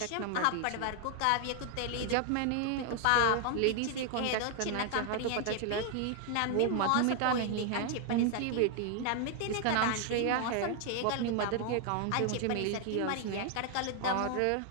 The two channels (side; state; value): both; different; correlation 0.00